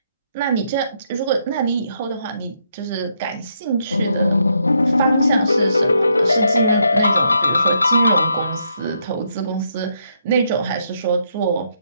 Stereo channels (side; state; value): both; inverted; correlation -0.76